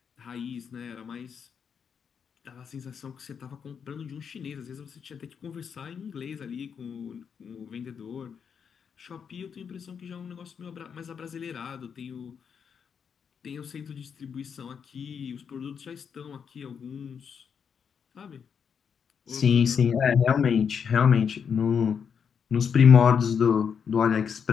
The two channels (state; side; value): quieter; right; 6.9 dB